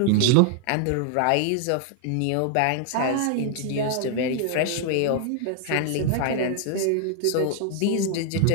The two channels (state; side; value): different; both; correlation 0.00